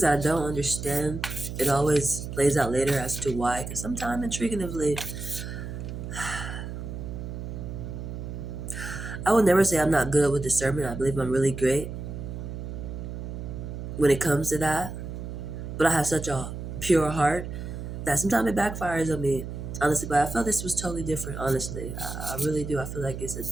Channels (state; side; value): noise; right; hum, 7 dB below the sound